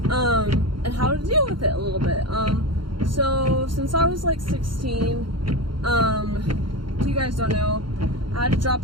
and how to deal with it a little bit. So since I was like 16, if you guys don't know, I had to drop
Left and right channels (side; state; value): left; late; 0.73 ms